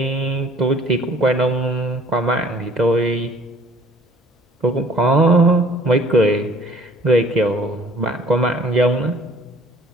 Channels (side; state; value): both; normal; correlation 0.54